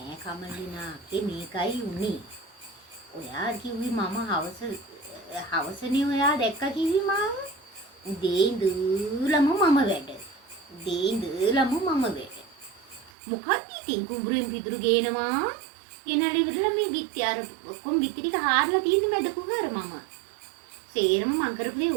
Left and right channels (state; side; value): drops out; left; at 13.1 s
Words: කමලිනා මේකයි උනේ. ඔයා කිව්වි මම හවසනේ ඔයා දැක්ක කිව්වි මාව. උදේ ඉඳලම මම වැඩ. උදේ ඉඳලම මම වැඩ. මොකක්ද ඉතින් කුඹුරෙන් පිදුරු ගේනවා. ගෙනල්ලා ඉවරලා මේ බිත්ති අර ඔක්කොම බිත්ති ටික හාරලා තියෙන්නේ මැද කුහර මම. සේරම මං කරපු දේ